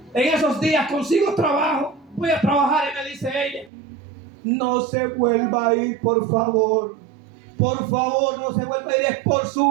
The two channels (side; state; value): left; drops out; at 3.7 s